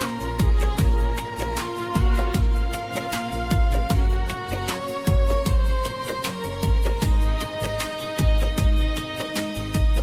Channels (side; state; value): both; identical; correlation 1.00